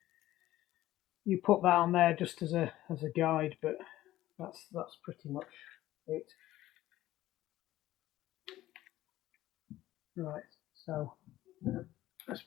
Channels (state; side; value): quieter; right; 15.0 dB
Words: you put that on there just as a guide. But that's pretty much it. Right. So let's